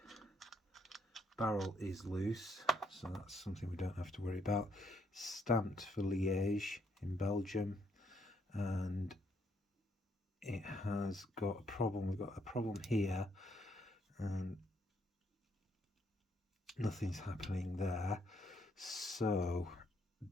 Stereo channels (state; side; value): normal; both; correlation 0.73